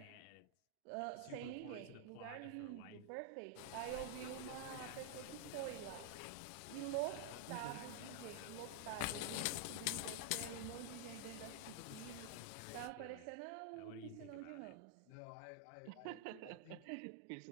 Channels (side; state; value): both; different; correlation -0.01